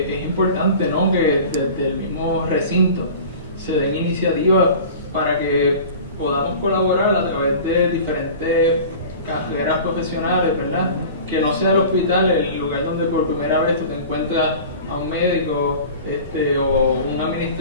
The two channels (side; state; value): both; inverted; correlation -0.39